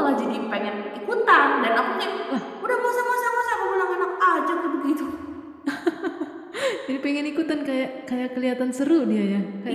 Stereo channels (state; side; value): identical; both; correlation 1.00